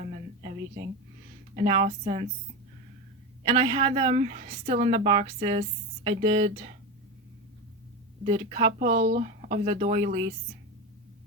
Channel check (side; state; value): both; normal; correlation 0.19